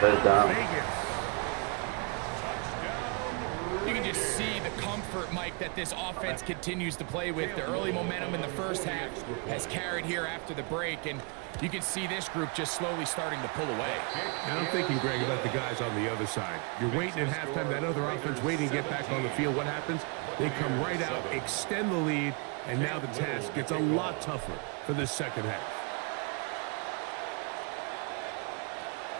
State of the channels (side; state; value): left; quieter; 34.7 dB